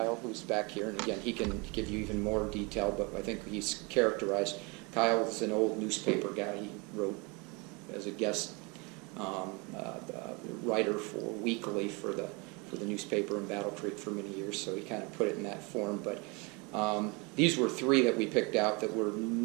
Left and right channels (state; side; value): quieter; left; 29.0 dB